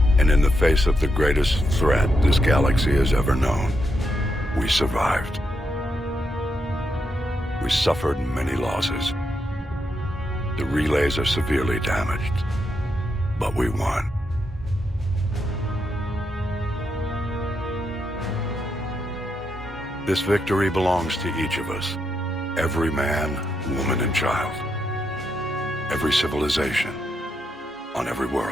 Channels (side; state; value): both; normal; correlation 0.82